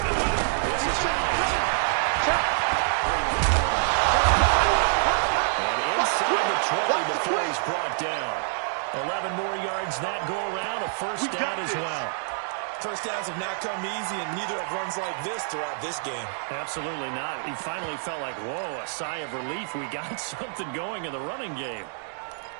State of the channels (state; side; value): silent; left; digital silence